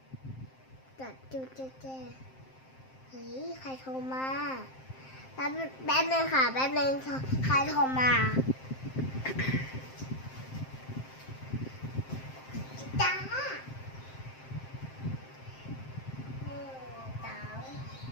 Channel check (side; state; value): right; late; 7.6 ms